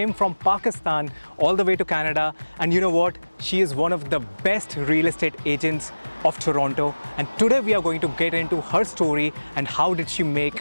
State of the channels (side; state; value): both; inverted; correlation -1.00